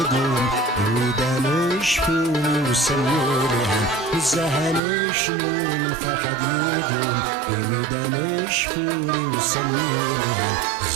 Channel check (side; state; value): left; drops out; at 4.8 s